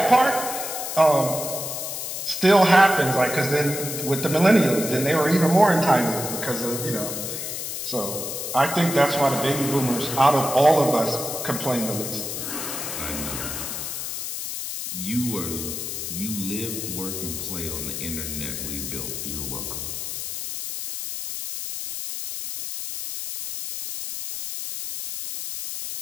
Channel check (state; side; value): noise; left; hiss, 5 dB below the sound